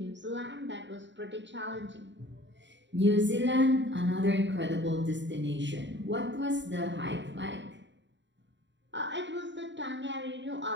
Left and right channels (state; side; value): late; left; 0.53 ms